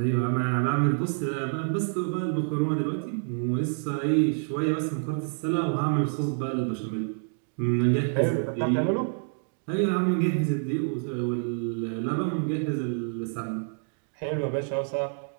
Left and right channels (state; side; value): silent; left; 60 dB below the other